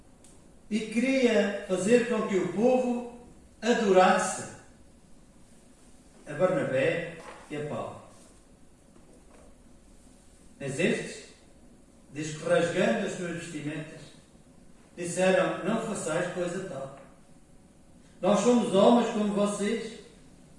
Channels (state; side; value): identical; both; correlation 1.00